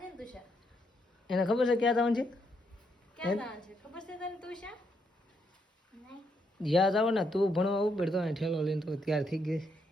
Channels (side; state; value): both; normal; correlation 0.77